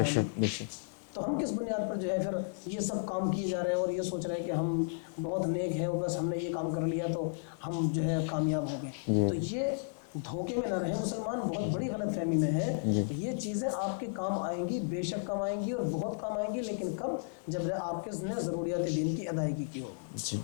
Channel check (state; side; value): silent; right; 55 dB below the other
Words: شک، بے شک، تو ہم کس بنیاد پر جو ہے پھر یہ سب کام کیے جا رہے ہیں اور یہ سوچ رہے ہیں کہ ہم بہت نیک ہیں اور بس ہم نے یہ کام کر لیا تو ہم جو ہے کامیاب ہو گئے۔ تو یہ دھوکے میں نہ رہے مسلمان، بہت بڑی غلط فہمی میں ہے۔ یہ چیزیں آپ کے کام آئیں گی، بے شک کام آئیں گی اور بہت کام آئیں گی، لیکن کب؟ جب آپ کے نے ضروریات دین کی ادائیگی کی ہوگی،